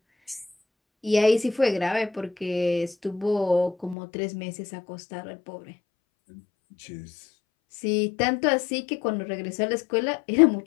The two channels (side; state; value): right; drops out; at 4.0 s